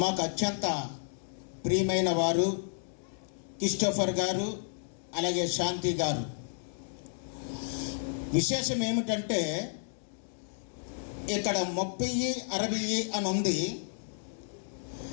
మాకు అత్యంత ప్రియమైన వారు క్రిస్టోఫర్ గారు, అలాగే శాంతి గారు. విశేషం ఏమిటంటే ఇక్కడ 30, 60 అని ఉంది.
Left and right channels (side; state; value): right; silent; digital silence